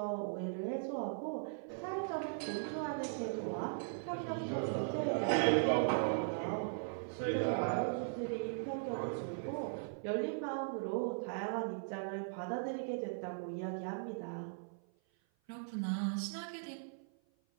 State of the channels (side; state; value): left; silent; 52 dB below the other